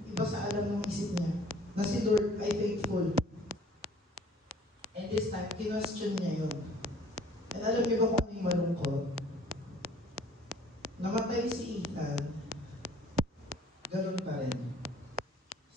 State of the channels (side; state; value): both; normal; correlation 0.54